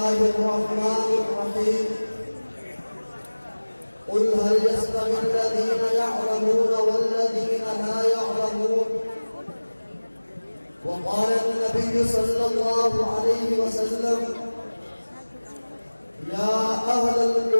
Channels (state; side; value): inverted; both; correlation -1.00